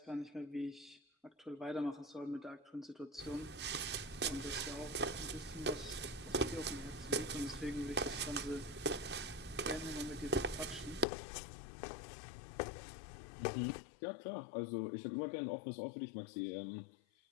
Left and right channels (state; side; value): drops out; right; at 11.1 s